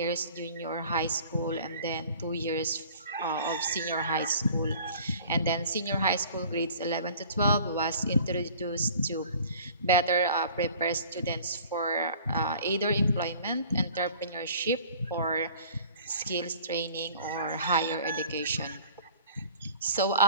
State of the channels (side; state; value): both; inverted; correlation -0.48